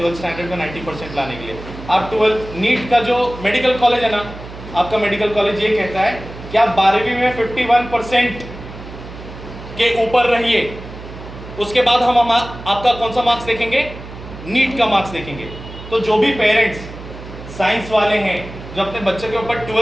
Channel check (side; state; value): right; noise; hum, 14 dB below the sound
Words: स्टैंडर्ड में 90% लाने के लिए। आप 12th नीट का जो मेडिकल कॉलेज है ना, आपका मेडिकल कॉलेज ये कहता है कि आप 12वीं में 51% के ऊपर रहिए, उसके बाद हम आपका कौन सा मार्क्स देखेंगे, नीट का मार्क्स देखेंगे। तो जो भी पेरेंट्स साइंस वाले हैं जो अपने बच्चे के ऊपर